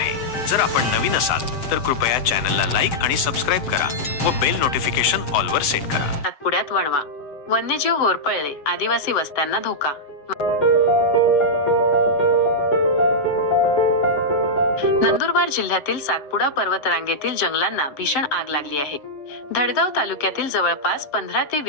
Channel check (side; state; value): right; late; 7.7 ms